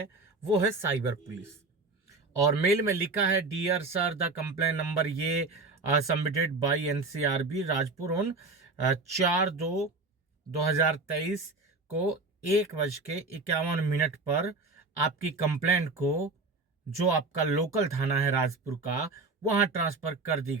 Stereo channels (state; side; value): quieter; left; 3.6 dB